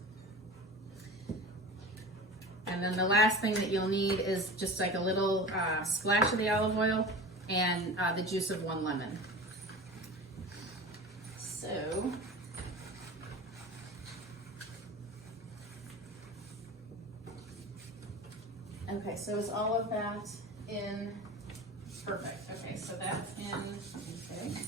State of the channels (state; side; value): normal; both; correlation 0.33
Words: And then the last thing that you'll need is just like a little splash of the olive oil and the juice of 1 lemon. So, okay, so is all of that in? Perfect. Okay, so that's in.